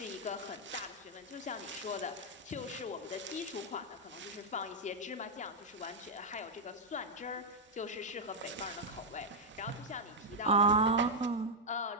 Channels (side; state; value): both; normal; correlation -0.03